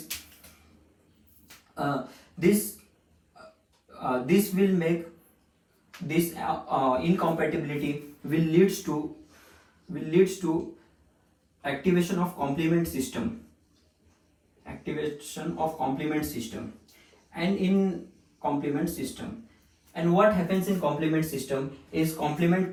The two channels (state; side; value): identical; both; correlation 1.00